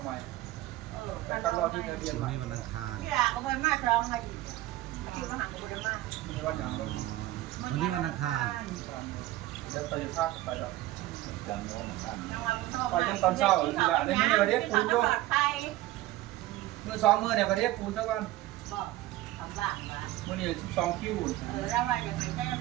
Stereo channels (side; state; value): left; quieter; 16.4 dB